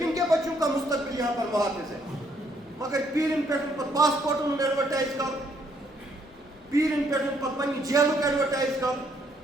کے بچوں کا مستقبل یہاں پر محافظ ہے مگر پیٖرن پٮ۪ٹھ پتہٕ پاسپورٹن ہُنٛد ایڈوَرٹایز کرُن پیٖرن پٮ۪ٹھ پتہٕ پننہِ جیلُک ایڈوَرٹایز کرُن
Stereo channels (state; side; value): normal; both; correlation 0.69